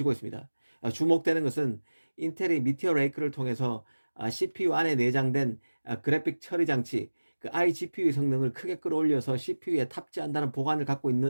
있습니다. 주목되는 것은 인텔이 미티어 레이크를 통해서 CPU 안에 내장된 그래픽 처리 장치, iGPU의 성능을 크게 끌어올려서 CPU에 탑재한다는 보관을 갖고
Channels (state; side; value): inverted; both; correlation -1.00